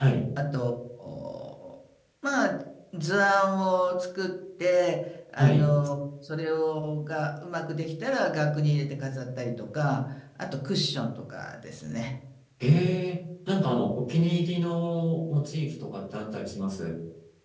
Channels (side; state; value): both; identical; correlation 1.00